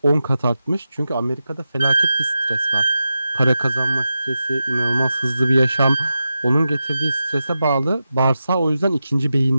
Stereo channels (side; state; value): both; inverted; correlation -0.91